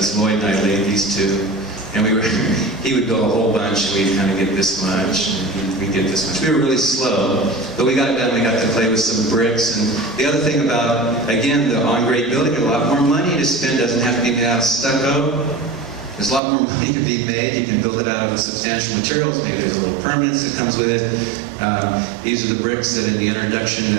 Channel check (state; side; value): drops out; left; at 16.4 s